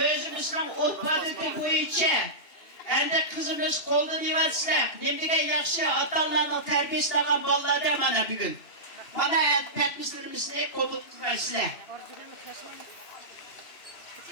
otpadıkı boyunca endi kızımız koldan yivatsizlar. Nemdige yaxşı atanlarının terbiyesi algan bolalar da mana bugün. Mana etmişlerimizni qabul qilmaysizlar.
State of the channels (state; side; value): late; right; 2.7 ms